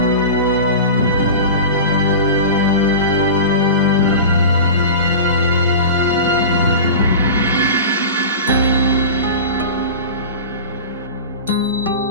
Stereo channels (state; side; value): inverted; both; correlation -0.30